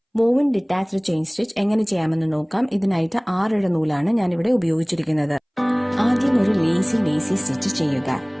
വോവൻ ഡിറ്റാച്ച്ഡ് ചെയിൻ സ്റ്റിച്ച് എങ്ങനെ ചെയ്യാമെന്ന് നോക്കാം. ഇതിനായിട്ട് 6 ഇഴ നൂലാണ് ഞാനിവിടെ ഉപയോഗിച്ചിരിക്കുന്നത്. ആദ്യം ഒരു ലേസി സ്റ്റിച്ച് ചെയ്യുക.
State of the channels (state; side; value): identical; both; correlation 1.00